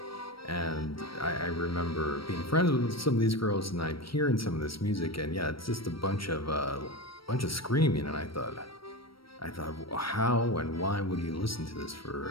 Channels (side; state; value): right; late; 0.75 ms